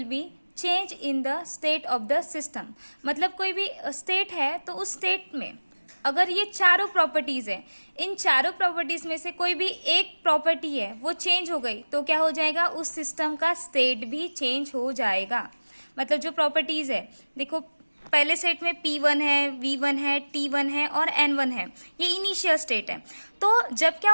be change in the state of the system. मतलब कोई भी स्टेट है तो उस स्टेट में अगर ये चारों प्रॉपर्टीज है, इन चारों प्रॉपर्टीज में से कोई भी एक प्रॉपर्टी है वो चेंज हो गई तो क्या हो जाएगा, उस सिस्टम का स्टेट भी चेंज हो जाएगा। मतलब जो प्रॉपर्टीज है, देखो पहले सेट में P1 है, V1 है, T1 है और N1 है, ये इनिशियल स्टेट है। तो जब क्या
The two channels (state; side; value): inverted; both; correlation -1.00